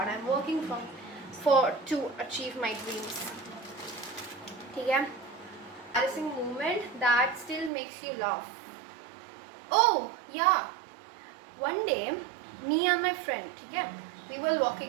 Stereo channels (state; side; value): drops out; left; at 7.7 s